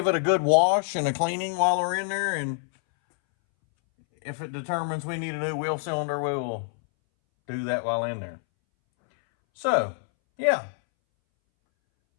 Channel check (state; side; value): silent; right; 61 dB below the other